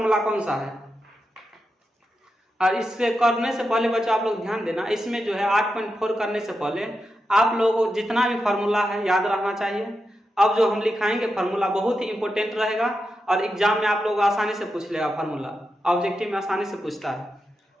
कौन सा है। और इससे करने से पहले बच्चों आप लोग ध्यान देना, इसमें जो है 8.4 करने से पहले आप लोगों को जितना भी फार्मूला है याद रखना चाहिए। अब जो हम लिखाएंगे फार्मूला बहुत ही इंपॉर्टेंट रहेगा और एग्जाम में आप लोग आसानी से पूछ लेगा। फार्मूला ऑब्जेक्टिव में आसानी से पूछता है।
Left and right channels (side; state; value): both; normal; correlation 0.88